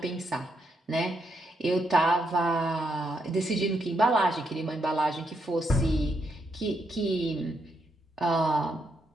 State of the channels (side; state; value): both; normal; correlation 0.79